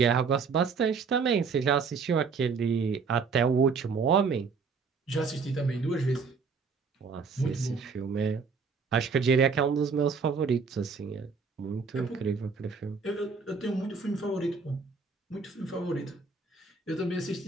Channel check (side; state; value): left; quieter; 5.1 dB